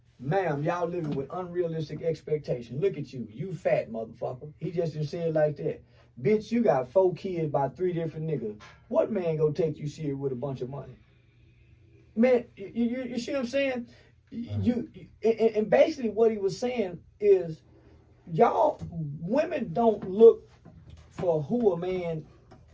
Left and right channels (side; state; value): both; identical; correlation 1.00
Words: Ma'am, y'all living with unrealistic expectations. Look at you. You fat motherfucker. He just didn't say it like that. Bitch, you got 4 kids by 3 different niggas. What man gonna take you serious with a bunch of money? Man, you see what I'm saying? And basically what he was saying is, y'all, women don't look for who a man